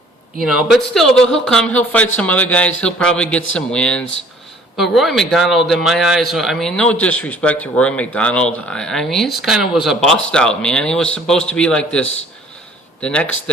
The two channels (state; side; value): normal; both; correlation 0.55